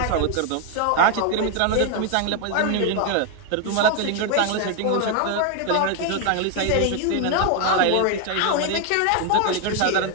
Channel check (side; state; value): both; different; correlation 0.01